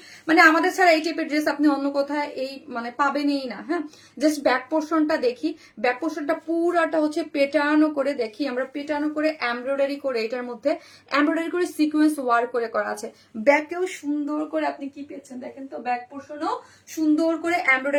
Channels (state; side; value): identical; both; correlation 1.00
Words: মানে আমাদের ছাড়া এই টাইপের ড্রেস আপনি অন্য কথায় এই মানে পাবেনই না। হ্যাঁ, জাস্ট ব্যাক পোর্শনটা দেখি, ব্যাক পোর্শনটা পুরাটা হচ্ছে পেটানো করে দেখি আমরা, পেটানো করে এমব্রয়ডারি করে, এটার মধ্যে এমব্রয়ডারি করে সিকোয়েন্স ওয়ার্ক করে করা আছে। ব্যাকেও সুন্দর করে আপনি কি পেয়েছেন দেখেন তো, ব্যাক পোর্শনও সুন্দর করে